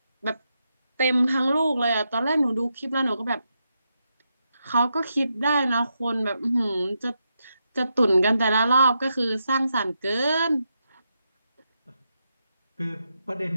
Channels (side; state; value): both; inverted; correlation -0.84